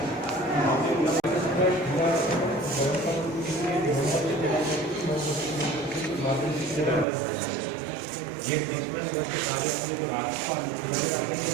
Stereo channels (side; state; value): left; drops out; at 7.1 s